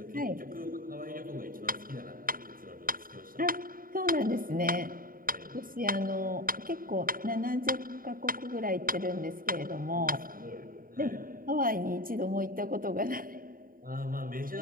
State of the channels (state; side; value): late; left; 0.41 ms